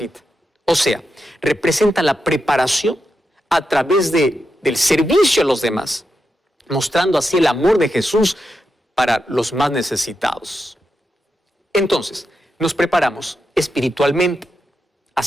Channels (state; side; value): normal; both; correlation 0.86